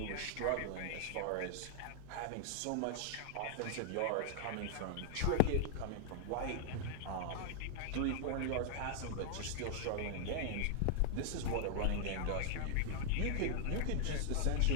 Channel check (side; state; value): both; different; correlation 0.00